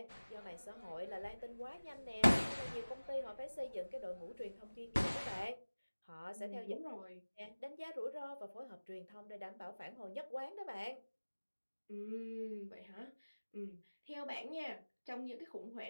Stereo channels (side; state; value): both; inverted; correlation -1.00